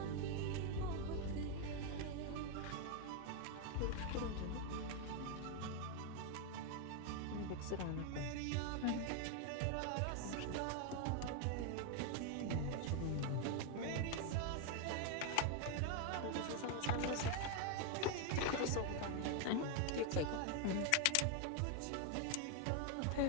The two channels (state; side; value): different; both; correlation 0.01